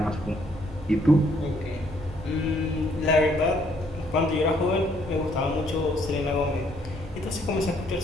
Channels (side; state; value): both; normal; correlation 0.67